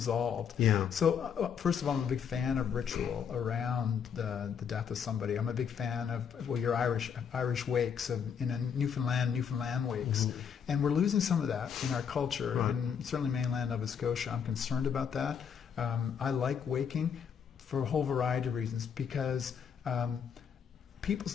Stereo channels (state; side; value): quieter; right; 7.4 dB